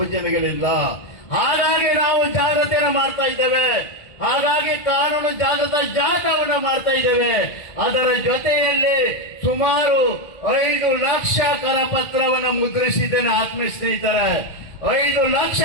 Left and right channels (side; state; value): right; late; 2.4 ms